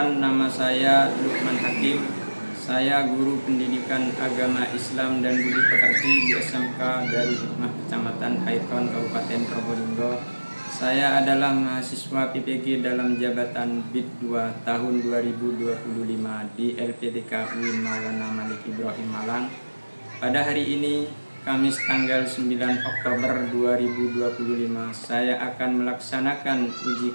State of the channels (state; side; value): inverted; both; correlation -1.00